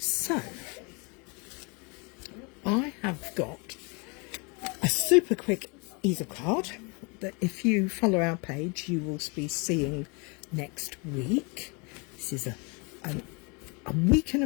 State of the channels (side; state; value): right; quieter; 31.2 dB